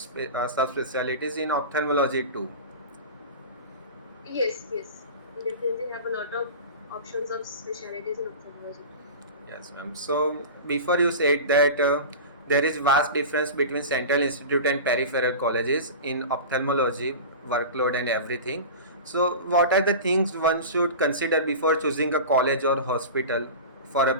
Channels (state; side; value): inverted; both; correlation -0.31